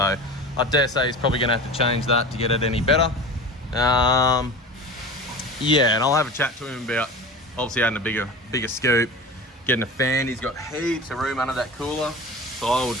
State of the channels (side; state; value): both; normal; correlation 0.33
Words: I dare say he's probably gonna have to change that to get it any better. Yeah, and I'll have a chat to him about obviously adding a bigger scoop, getting a fan. He's got heaps of room under that cooler, so I would